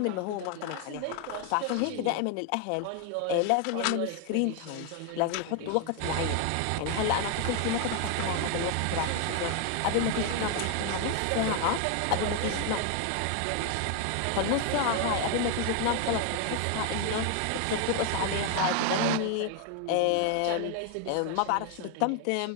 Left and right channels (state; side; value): different; both; correlation 0.01